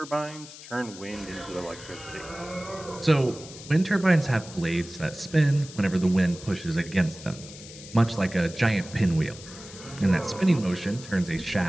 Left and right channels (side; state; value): left; noise; hiss, 16 dB below the sound